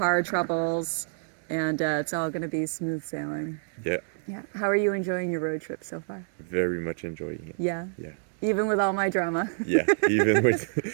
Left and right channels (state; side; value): silent; left; digital silence